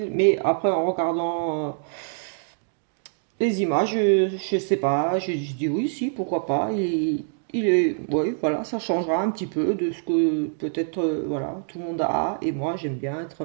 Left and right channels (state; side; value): silent; left; digital silence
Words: Mais après, en regardant les images, je sais pas, je dis oui, si, pourquoi pas. Il est, oui, voilà, ça changera un petit peu de ce que peut-être, voilà, tout le monde a. Et moi, j'aime bien être